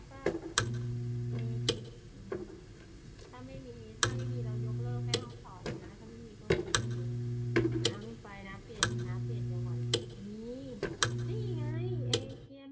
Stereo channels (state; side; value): identical; both; correlation 1.00